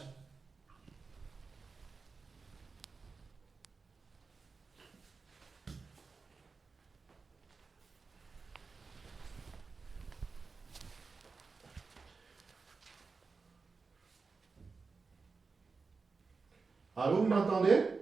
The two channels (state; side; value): quieter; left; 4.5 dB